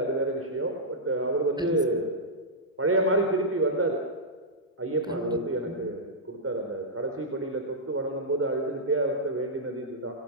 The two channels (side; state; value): both; normal; correlation -0.11